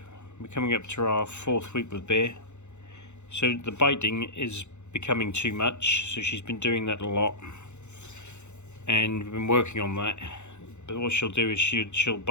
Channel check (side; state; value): right; late; 0.83 ms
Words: we're coming up to our 4th week with Bear. So the biting is becoming too much, so she's been doing that a lot. And we've been working on that. But what she'll do is she'll